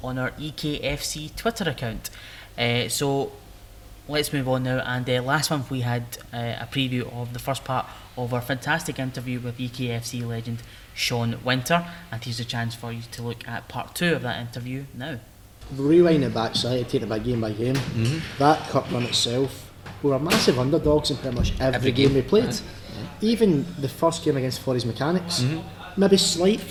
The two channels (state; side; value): identical; both; correlation 1.00